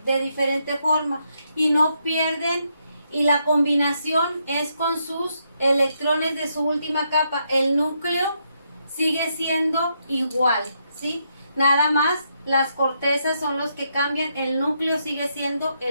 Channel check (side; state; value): both; inverted; correlation -0.78